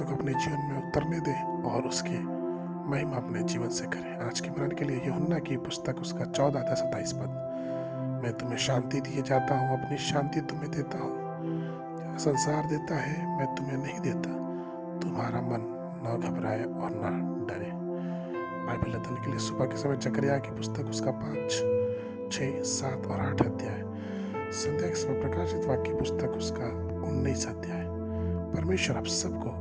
को अपने जीवन में उतरने दें और उसके महिमा अपने जीवन से करें। आज के मरण के लिए यूहन्ना की पुस्तक उसका 14 अध्याय 27 पद, मैं तुम्हें शांति दिए जाता हूँ, अपनी शांति तुम्हें देता हूँ, संसार देता है मैं तुम्हें नहीं देता। तुम्हारा मन न घबराए और न डरे। बाइबल अध्ययन के लिए सुबह के समय जकरिया की पुस्तक उसका 5, 6, 7 और 8 अध्याय, संध्या के समय प्रकाशित वाक्य पुस्तक उसका 19 अध्याय। परमेश्वर आप सबको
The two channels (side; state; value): both; identical; correlation 1.00